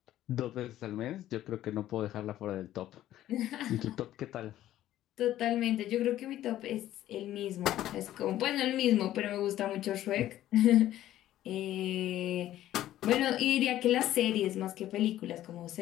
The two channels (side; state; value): right; quieter; 13.3 dB